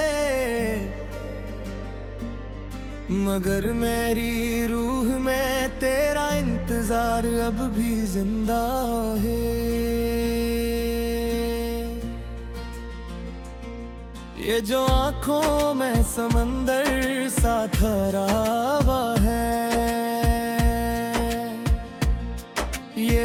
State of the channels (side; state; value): both; identical; correlation 1.00